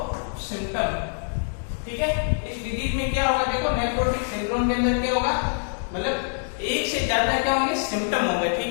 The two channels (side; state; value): right; silent; digital silence